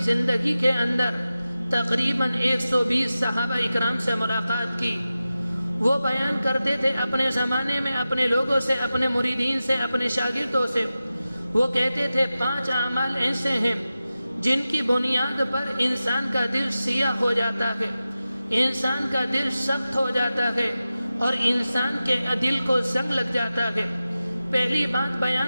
زندگی کے اندر تقریباً 120 صحابہ اکرام سے ملاقات کی، وہ بیان کرتے تھے اپنے زمانے میں اپنے لوگوں سے، اپنے مریدین سے، اپنے شاگردوں سے۔ وہ کہتے تھے 5 اعمال ایسے ہیں جن کی بنیاد پر انسان کا دل سیاہ ہو جاتا ہے، انسان کا دل سخت ہو جاتا ہے اور انسان کے دل کو زنگ لگ جاتا ہے۔ پہلی بات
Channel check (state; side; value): inverted; both; correlation -0.94